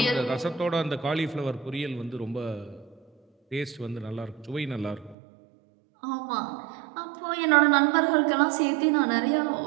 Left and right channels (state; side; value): drops out; left; at 5.2 s